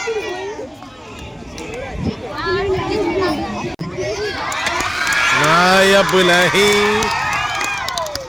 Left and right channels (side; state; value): both; identical; correlation 1.00